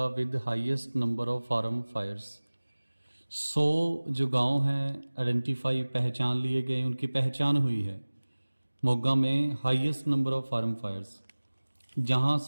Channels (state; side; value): inverted; both; correlation -1.00